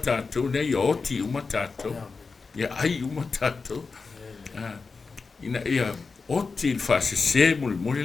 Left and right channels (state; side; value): quieter; right; 4.5 dB